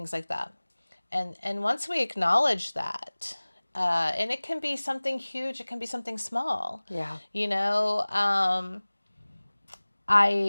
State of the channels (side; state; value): both; inverted; correlation -1.00